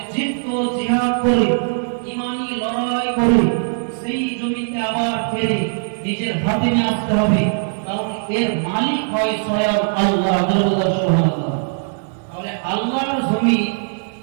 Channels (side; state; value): left; silent; digital silence